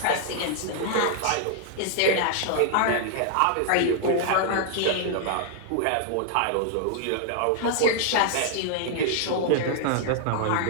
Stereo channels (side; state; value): both; different; correlation -0.01